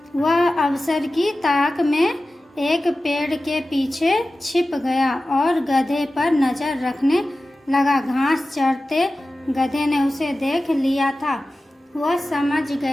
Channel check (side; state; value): both; normal; correlation 0.95